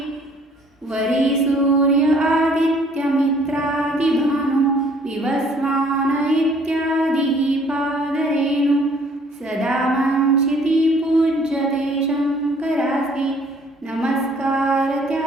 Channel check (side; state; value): both; normal; correlation 0.58